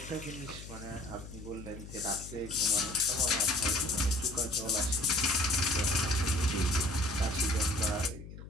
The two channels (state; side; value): noise; left; hum, 13 dB below the sound